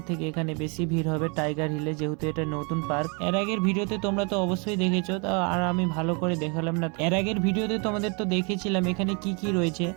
থেকে এখানে বেশি ভিড় হবে টাইগার হিলে, যেহেতু এটা নতুন পার্ক। এর আগের ভিডিওতে তোমরা তো অবশ্যই দেখেছো, আর আমি ভালো করে দেখালাম না। এর আগের ভিডিওতে তোমাদের তো দেখেছিলাম এখানে কি কি রয়েছে,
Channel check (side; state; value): left; quieter; 33.9 dB